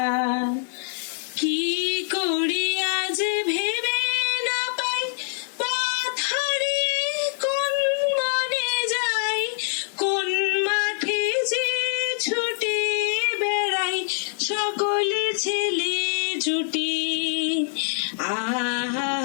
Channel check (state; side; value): silent; right; 62 dB below the other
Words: কি করি আজ ভেবে না পাই, পথ হারিয়ে কোন মনে যাই, কোন মাঠে যে ছুটে বেড়াই সকলে ছেলে জুটি। আহা